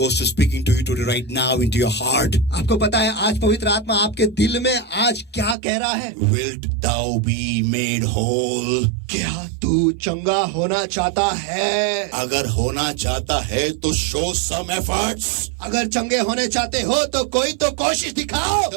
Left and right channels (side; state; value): left; drops out; at 5.6 s